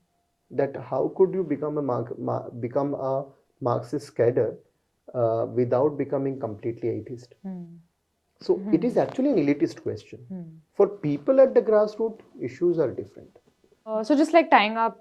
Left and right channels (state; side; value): identical; both; correlation 1.00